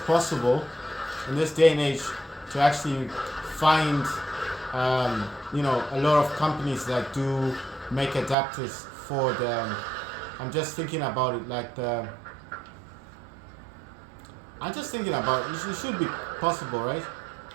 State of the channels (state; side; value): drops out; left; at 8.3 s